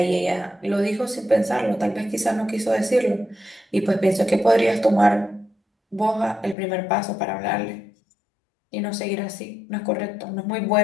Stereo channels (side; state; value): right; drops out; at 6.6 s